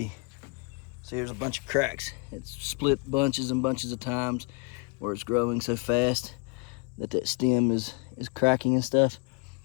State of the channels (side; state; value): right; quieter; 32.7 dB